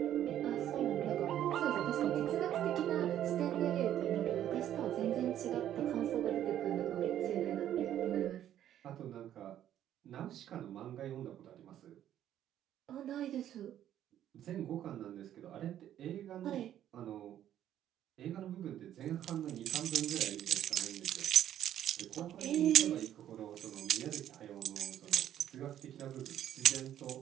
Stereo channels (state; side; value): quieter; left; 11.2 dB